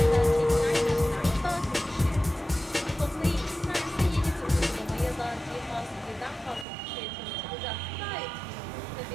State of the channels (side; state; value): left; drops out; at 6.7 s